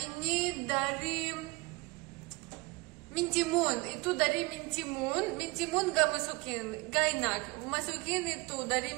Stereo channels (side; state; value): left; quieter; 24.8 dB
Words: dari mintimun, itu dari mintimun gak masukin, gak enak. Masukin itu dari